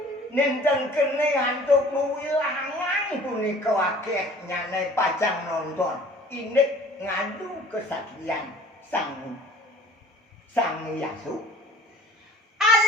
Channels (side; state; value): both; normal; correlation 0.50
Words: Nenten kene antuk wilangan punika akeh nyane pajang nonton. Inik ngadu kesatrian sang Yasu.